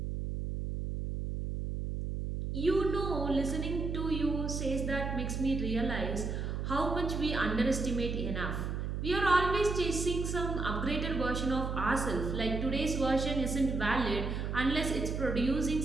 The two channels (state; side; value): noise; right; hum, 3 dB below the sound